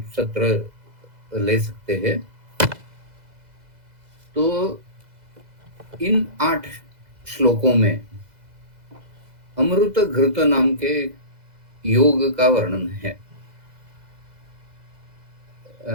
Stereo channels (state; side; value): late; left; 2.0 ms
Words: सत्र ले सकते हैं। तो इन 8 श्लोकों में अमृत घृत नाम के योग का वर्णन है।